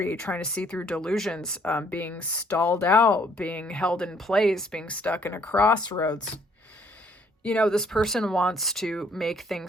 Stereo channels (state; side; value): normal; both; correlation 0.64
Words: trying to see through delusions, being stalled out, being held in place, being stuck in a crossroads. This person wants to make